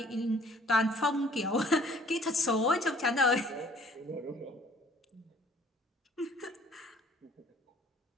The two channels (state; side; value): normal; both; correlation 0.56